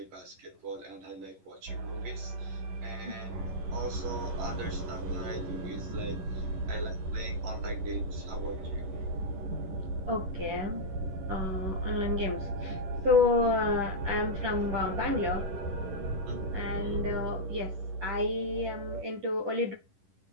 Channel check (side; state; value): left; late; 11 ms